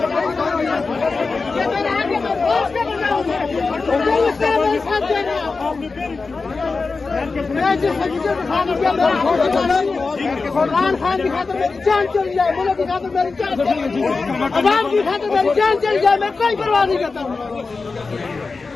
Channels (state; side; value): quieter; right; 4.2 dB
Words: खान की खातिर मेरी जान चली जाए, मुल्क की खातिर मेरी जान चली जाए, अवाम की खातिर मेरी जान चली जाए, मैं कोई परवाह नहीं करता।